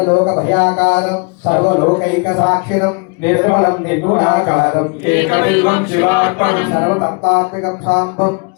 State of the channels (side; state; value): right; quieter; 33.0 dB